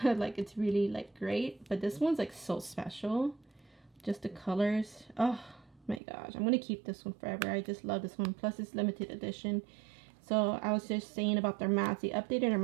Like, it's really like great, but this one's like so special. Just the colors, oh my gosh, I'm gonna keep this one forever. I just love this one. Plus it's limited edition. So I was just saying about their mattes, they updated their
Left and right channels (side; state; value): left; drops out; at 6.0 s